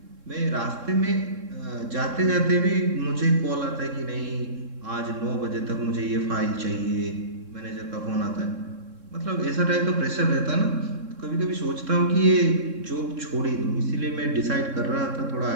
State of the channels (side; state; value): left; late; 3.7 ms